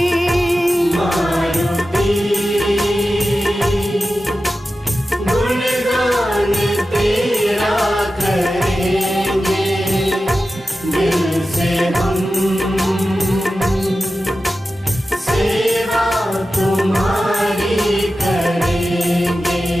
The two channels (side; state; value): both; normal; correlation 0.93